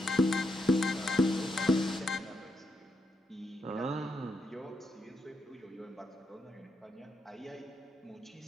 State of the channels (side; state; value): both; normal; correlation 0.82